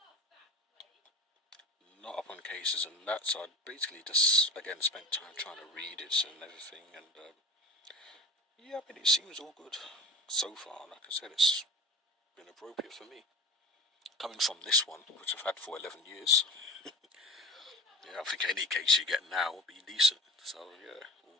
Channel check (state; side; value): normal; both; correlation 0.36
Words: up on cases and that, so I basically just again spent time trying to read it and everything, and yeah, I mean, it seems all good so far. Like I said, it's been appropriate for me. Coming from this one, which I've had for 11 years, yeah, I think any case you get now will be decent. So yeah, all